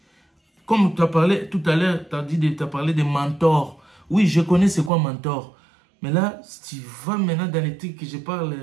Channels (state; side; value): drops out; left; at 4.9 s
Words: Comme tu as parlé tout à l'heure, tu as parlé de mentors. Oui, je connais c'est quoi mentor. Mais là, tu vas maintenant dans les trucs que je